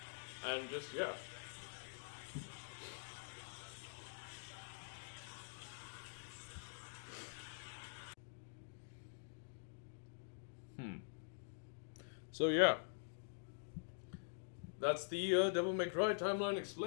And just, yeah. So yeah. That's the Devil May Cry timeline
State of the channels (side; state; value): right; silent; digital silence